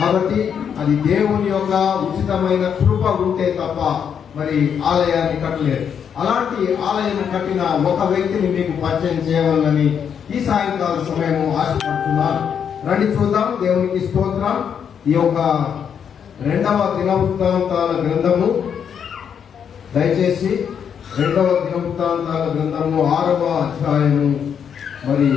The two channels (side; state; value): right; quieter; 7.8 dB